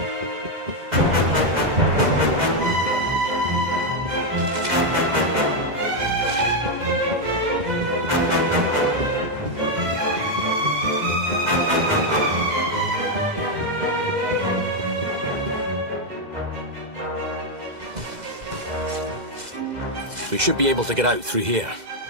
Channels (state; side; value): late; left; 2.0 ms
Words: We should be able to get out through here.